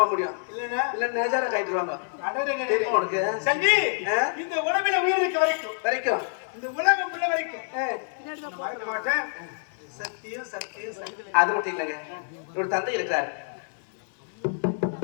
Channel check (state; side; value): silent; right; digital silence